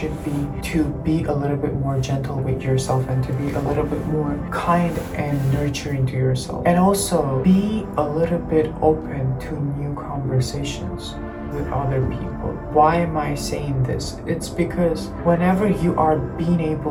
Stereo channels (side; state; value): both; identical; correlation 1.00